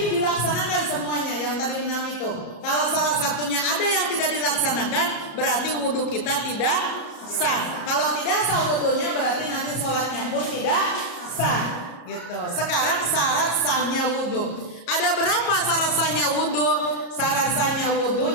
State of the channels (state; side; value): late; right; 34 ms